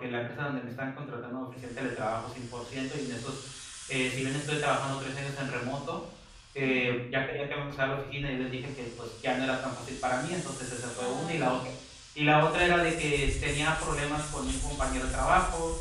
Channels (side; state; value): both; identical; correlation 1.00